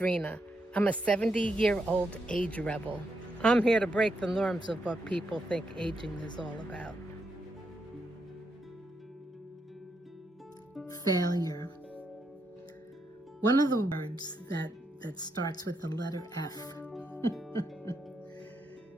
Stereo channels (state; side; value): normal; both; correlation 0.81